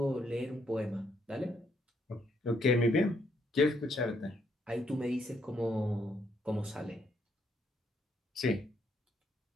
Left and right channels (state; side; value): normal; both; correlation 0.73